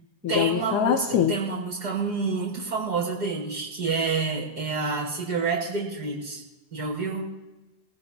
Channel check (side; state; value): left; late; 4.8 ms